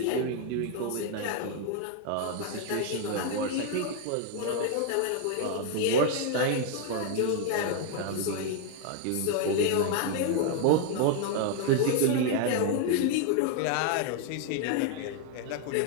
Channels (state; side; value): different; both; correlation 0.00